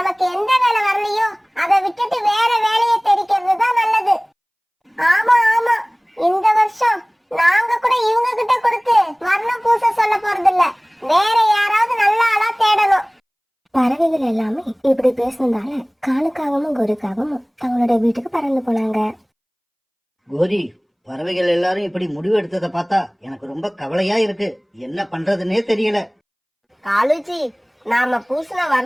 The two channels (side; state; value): both; identical; correlation 1.00